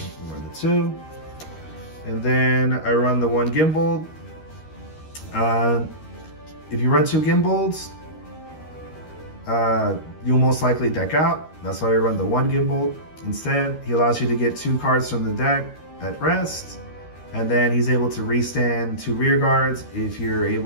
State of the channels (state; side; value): late; right; 13 ms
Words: run the 2. And then I run the 1 gimbal. If you run 2 gimbals, you'll most likely deck out. That's why we run the 1 gimbal. Instead, he allows you to get 2 cards from the deck at rest. And then he's able to restand 2 rear guards if you're